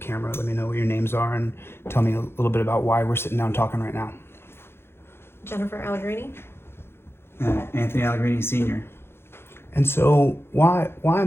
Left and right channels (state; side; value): late; right; 0.12 ms